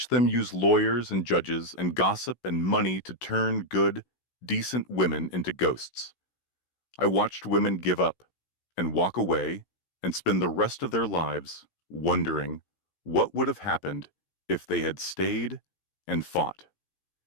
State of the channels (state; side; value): late; right; 16 ms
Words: them use lawyers and judges and gossip and money to turn good, decent women into ghosts. I watched women give up and walk away and spend the rest of their lives wondering what would have happened if they had stayed and fought.